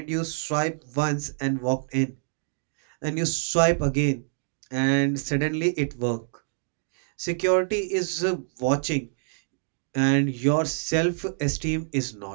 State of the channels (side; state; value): left; silent; digital silence